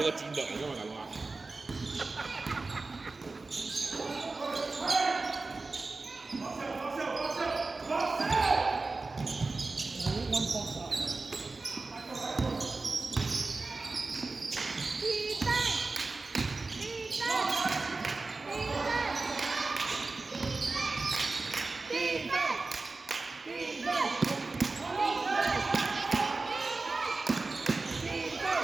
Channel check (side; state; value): left; quieter; 3.6 dB